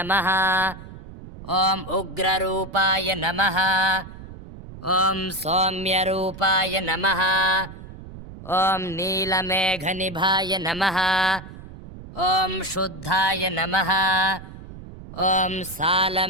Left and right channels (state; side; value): noise; right; rumble, 14 dB below the sound